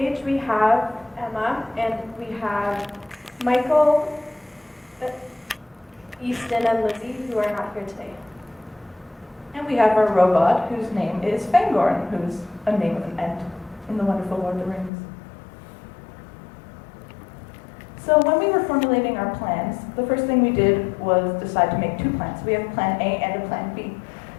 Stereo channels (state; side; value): drops out; right; at 14.9 s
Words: we have Emma, and we have Michael, Easton, and Lizzie, who are not here today. And we have our robot, whose name is Fangorn, who's a name of an Ent in the wonderful Lord of the Rings. So when we were formulating our plans, the first thing we did was decide to make two plans. We have a plan A and a plan B.